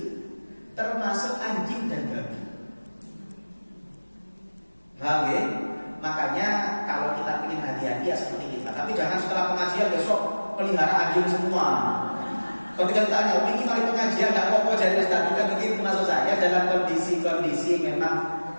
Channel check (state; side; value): inverted; both; correlation -1.00